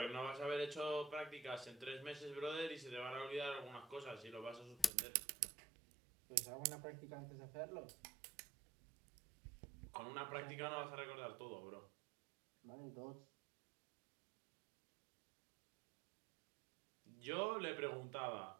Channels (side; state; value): left; drops out; at 4.9 s